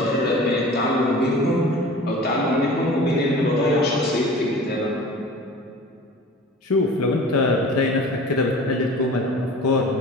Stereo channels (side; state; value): both; normal; correlation 0.41